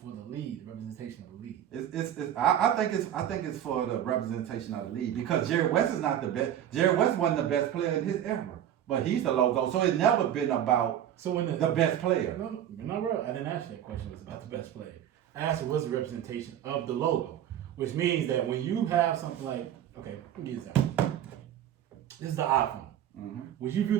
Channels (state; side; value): quieter; left; 10.7 dB